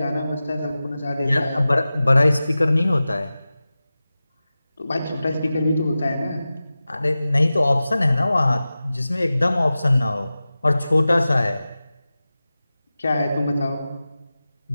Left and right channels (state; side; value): inverted; both; correlation -0.95